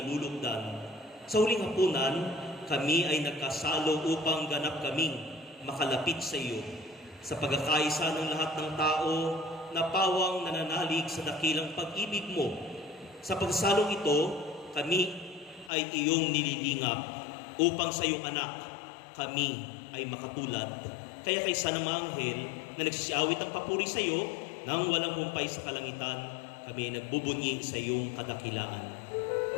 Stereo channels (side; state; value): right; drops out; at 15.7 s